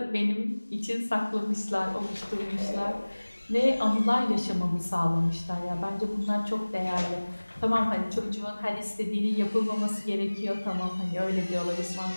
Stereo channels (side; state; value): both; inverted; correlation -1.00